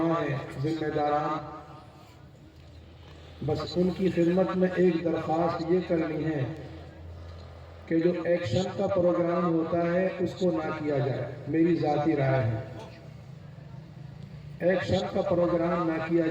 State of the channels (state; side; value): identical; both; correlation 1.00